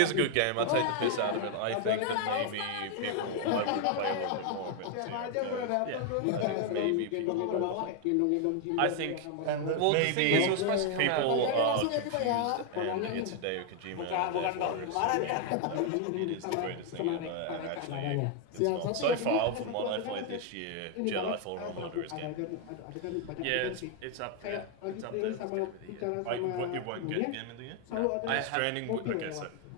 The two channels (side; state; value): both; different; correlation 0.01